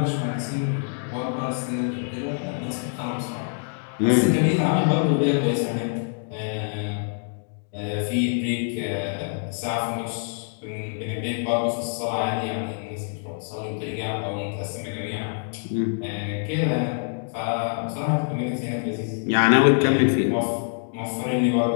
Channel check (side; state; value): right; silent; digital silence